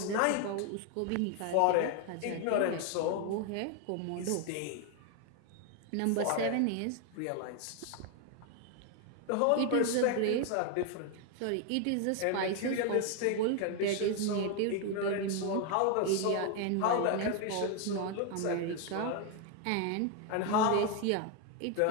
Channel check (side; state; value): both; different; correlation 0.01